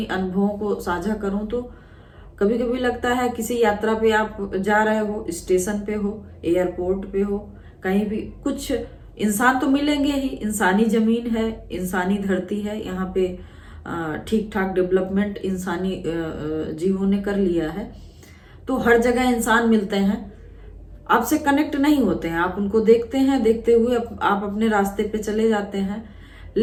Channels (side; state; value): both; identical; correlation 1.00